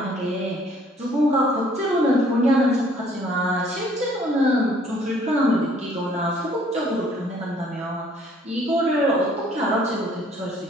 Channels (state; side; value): normal; both; correlation 0.60